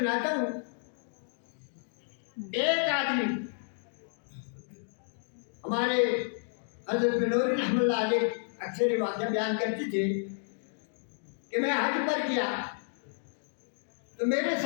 ہوں. ایک آدمی ہمارے حضرت بنوری رحمۃ اللہ علیہ اکثر یہ واقعہ بیان کرتے تھے کہ میں حج پر کیا تو میرے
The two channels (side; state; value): right; silent; digital silence